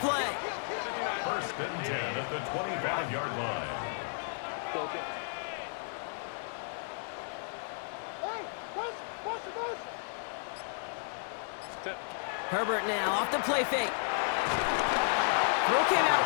play. 1st and 10 at the 25-yard line. Herbert now off the play fake. Throw came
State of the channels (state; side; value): silent; right; 56 dB below the other